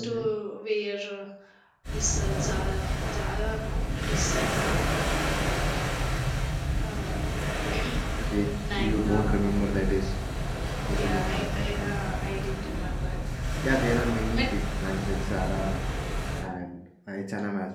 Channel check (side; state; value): both; identical; correlation 1.00